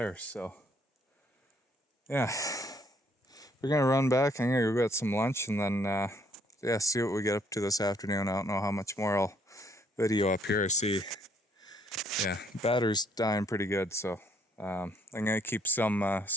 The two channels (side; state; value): both; normal; correlation 0.66